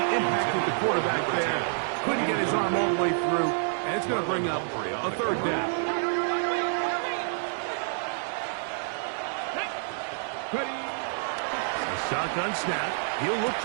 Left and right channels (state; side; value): silent; left; digital silence